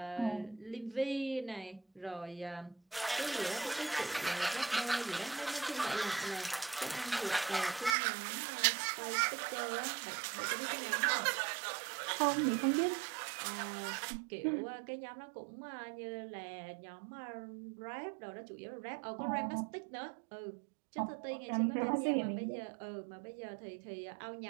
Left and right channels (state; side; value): drops out; left; at 8.0 s